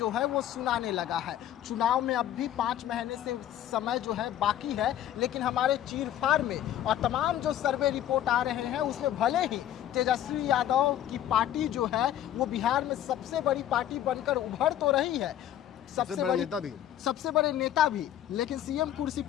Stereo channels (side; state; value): right; quieter; 11.3 dB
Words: है वो सुनाने लगा है। चुनाव में अब भी 5 महीने से समय जो है बाकी है, लेकिन हमारे चीरफाड़ में और तमाम जो सर्वे रिपोर्ट आ रहे हैं उसमें भले ही तेजस्वी यादव की पार्टी जो है वो बिहार में सबसे बड़ी पार्टी बनकर उभर तो रही है, सबसे बड़े नेता भी, लेकिन सीएम कुर्सी